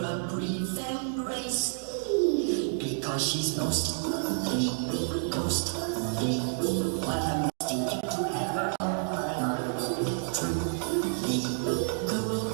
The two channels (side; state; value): left; silent; digital silence